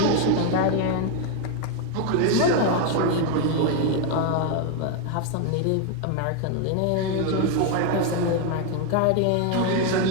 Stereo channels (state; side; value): different; both; correlation 0.01